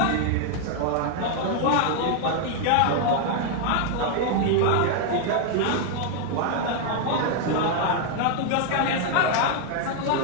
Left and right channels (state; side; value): different; both; correlation 0.00